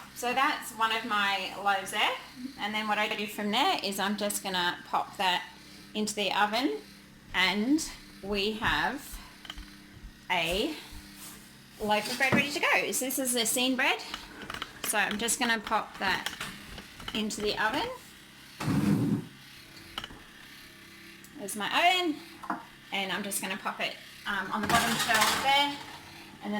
So that's one of my loaves there. And then what I do from there is I'm just going to pop that into the oven, and we have a loaf of bread ready to go. So this is Essene bread. So I'm just going to pop that into the oven. There's my oven, and I'm just going to pop it on the bottom shelf there, and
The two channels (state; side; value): identical; both; correlation 1.00